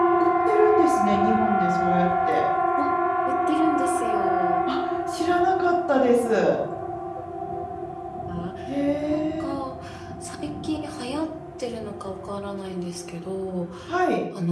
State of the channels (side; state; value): both; identical; correlation 1.00